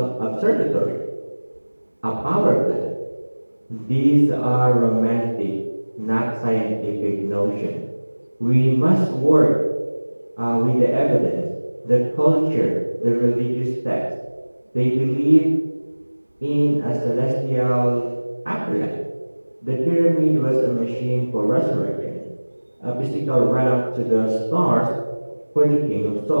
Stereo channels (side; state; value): both; inverted; correlation -1.00